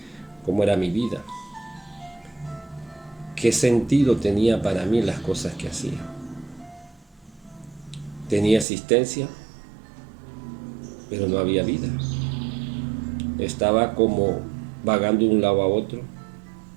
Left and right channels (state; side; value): drops out; left; at 8.7 s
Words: ¿Cómo era mi vida? ¿Qué sentido tenía para mí las cosas que hacía? Tenía existencia, pero no había vida. Estaba como vagando de un lado a otro,